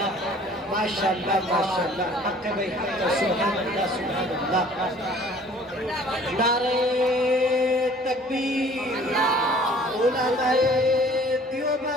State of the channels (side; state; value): both; normal; correlation 0.52